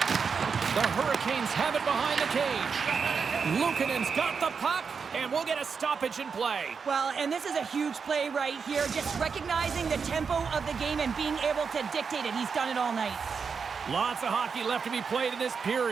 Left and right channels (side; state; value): left; quieter; 5.7 dB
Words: The Hurricanes have it behind the cage. Luukkonen's got the puck, and we'll get a stoppage in play. Well, and this is a huge play right here. Just recognizing the tempo of the game and being able to dictate it. He's done it all night. Lots of hockey left to be played in this